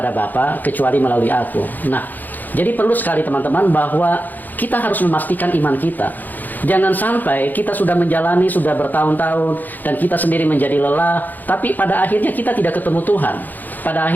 Bapa kecuali melalui aku. Nah, jadi perlu sekali teman-teman bahwa kita harus memastikan iman kita. Jangan sampai kita sudah menjalani, sudah bertahun-tahun dan kita sendiri menjadi lelah, tapi pada akhirnya kita tidak ketemu Tuhan. Pada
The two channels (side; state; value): right; late; 0.085 ms